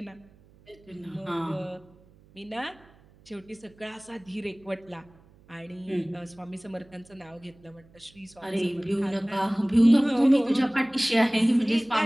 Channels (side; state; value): right; noise; hum, 27 dB below the sound